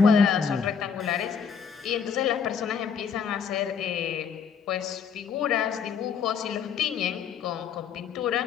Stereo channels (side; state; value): right; quieter; 6.7 dB